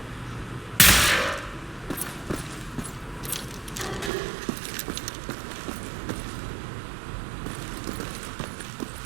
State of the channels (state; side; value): drops out; left; at 4.1 s